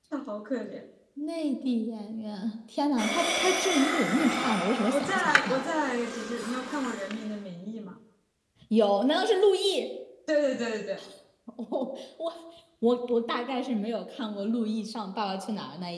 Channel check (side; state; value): both; identical; correlation 1.00